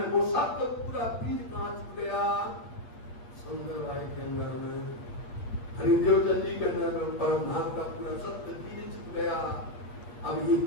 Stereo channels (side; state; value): right; late; 8.4 ms